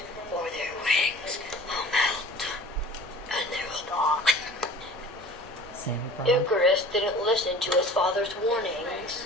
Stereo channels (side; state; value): both; normal; correlation 0.44